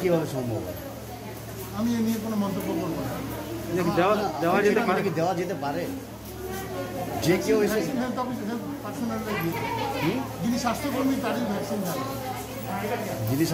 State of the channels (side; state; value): both; identical; correlation 1.00